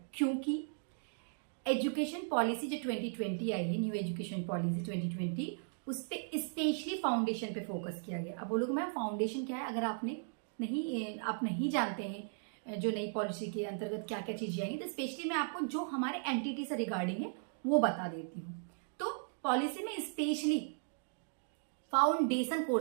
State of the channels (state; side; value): silent; left; digital silence